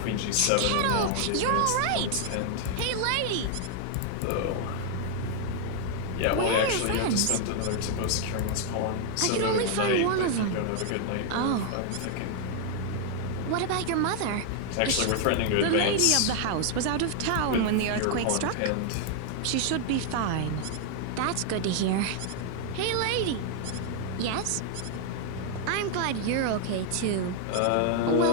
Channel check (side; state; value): both; different; correlation 0.00